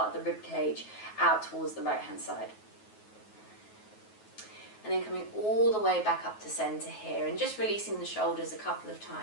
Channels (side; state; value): right; late; 9.3 ms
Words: of the rib cage out towards the right hand side. And then coming all the way back up to centre here and just releasing the shoulders a couple of